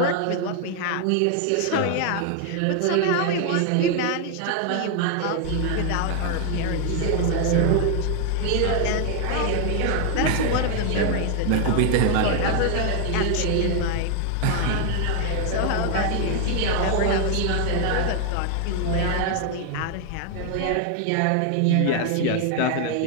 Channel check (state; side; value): different; both; correlation 0.00